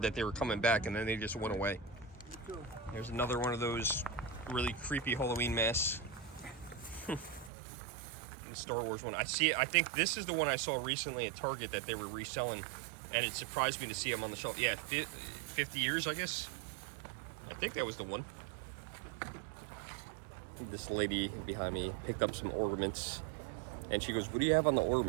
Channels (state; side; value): drops out; left; at 7.5 s